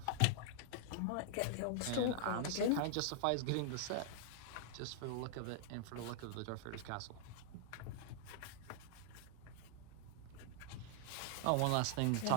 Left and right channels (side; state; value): both; different; correlation -0.01